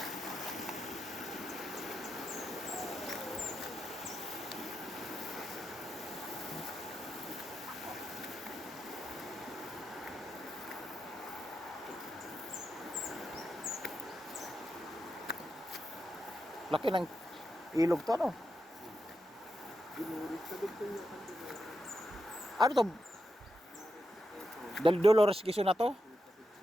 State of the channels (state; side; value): normal; both; correlation 0.86